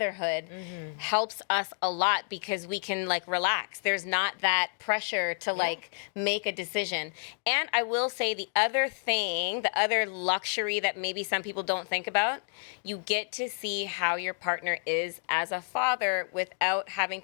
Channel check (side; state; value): right; silent; digital silence